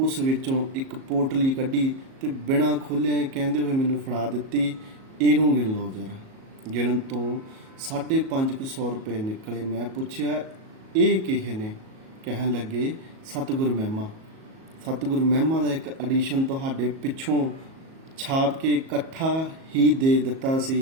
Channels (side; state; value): left; late; 37 ms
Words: ਵਿੱਚੋਂ ਇੱਕ ਪੋਟਲੀ ਕੱਢੀ ਤੇ ਬਿਨਾਂ ਖੋਲ੍ਹਿਆਂ ਕਹਿੰਦੇ ਹੋਏ ਮੈਨੂੰ ਫੜਾ ਦਿੱਤੀ, ਇਹਨੂੰ ਗਿਣ ਲਓ ਜ਼ਰਾ। ਗਿਣਨ ਤੋਂ 550 ਰੁਪਏ ਨਿਕਲੇ। ਮੈਂ ਪੁੱਛਿਆ, ਇਹ ਕਿਹੇ ਨੇ? ਕਹਿਣ ਲੱਗੇ, ਸਤਿਗੁਰ ਮਹਿਮਾ। ਸਤਿਗੁਰ ਮਹਿਮਾ ਦਾ ਇੱਕ ਐਡੀਸ਼ਨ ਤੁਹਾਡੇ ਪਿੱਛੋਂ ਛਾਪ ਕੇ ਇਕੱਠਾ ਹੀ ਦੇ ਦਿੱਤਾ